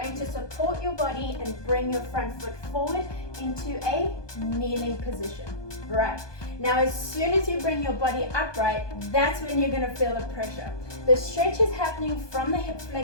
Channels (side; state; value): right; late; 1.2 ms